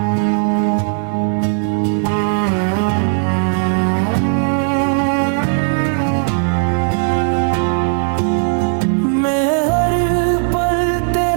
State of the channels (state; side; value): silent; left; 57 dB below the other